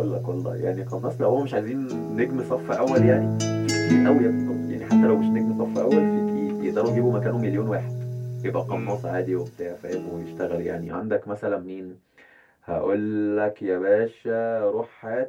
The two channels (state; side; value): identical; both; correlation 1.00